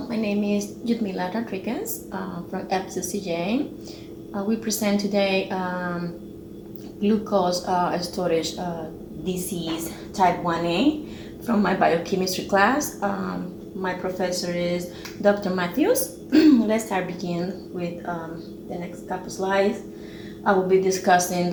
my name is Yudmila Rodriguez from FCCJ. We present today glucose storage disease type 1A from my biochemistry class. My professor is Dr. Matthews. Let's begin with the next couple slides. I will be discussing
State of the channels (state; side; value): identical; both; correlation 1.00